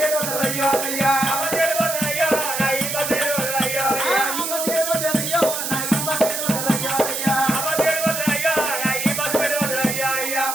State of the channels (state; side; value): noise; right; hiss, 3 dB below the sound